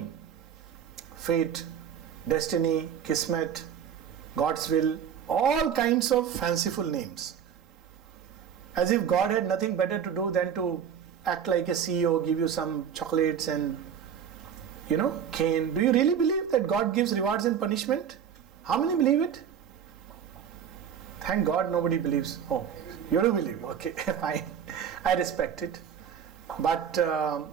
Fate, destiny, kismet, God's will, all kinds of fanciful names. As if God had nothing better to do than to act like a CEO, give you some chocolates and, cane. Do you really believe that God gives rewards and punishment? How many believe it? Thank God nobody believes. Oh, you do believe. Okay, fine. I respect it. But,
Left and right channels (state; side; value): quieter; left; 8.3 dB